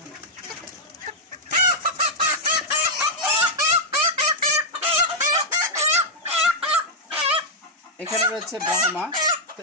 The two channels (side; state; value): both; normal; correlation -0.04